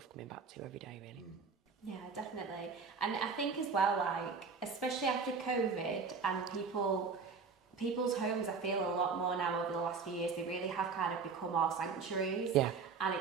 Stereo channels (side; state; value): left; quieter; 5.1 dB